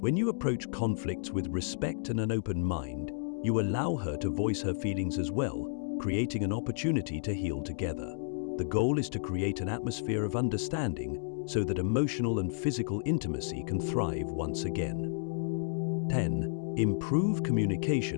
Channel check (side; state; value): right; silent; digital silence